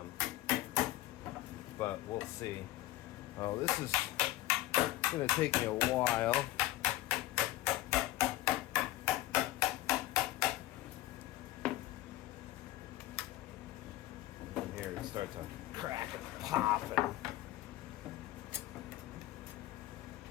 we'll see. Oh, this is going to take me a while. And here it starts to crack and pop and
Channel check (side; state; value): right; quieter; 16.0 dB